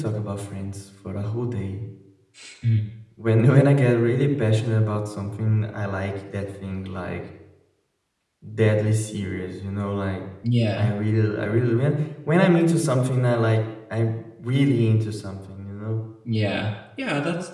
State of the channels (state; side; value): identical; both; correlation 1.00